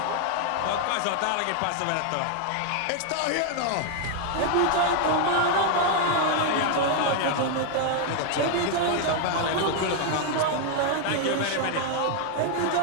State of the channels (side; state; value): both; different; correlation 0.00